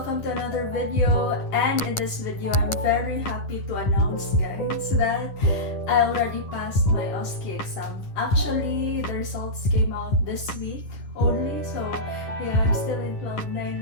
to another video, and in this video I'm very happy to announce guys that I already passed my osce exam. Actually, the results came out this week only, so yeah, I'm still in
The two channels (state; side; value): late; right; 10 ms